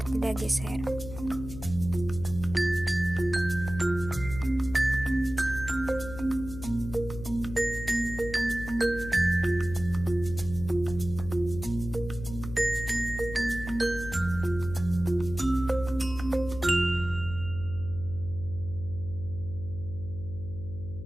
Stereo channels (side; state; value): left; noise; hum, 11 dB below the sound